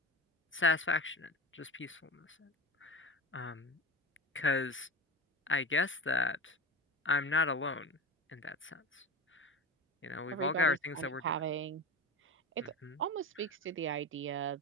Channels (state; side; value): normal; both; correlation 0.27